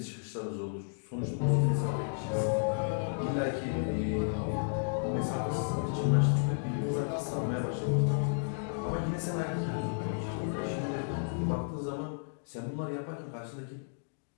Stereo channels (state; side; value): silent; right; digital silence